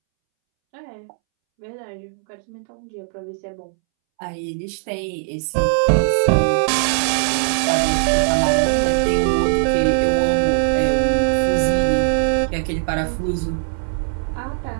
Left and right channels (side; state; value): left; silent; 65 dB below the other